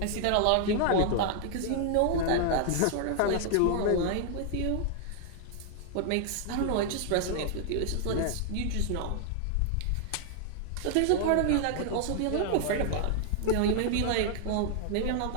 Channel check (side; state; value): both; different; correlation 0.00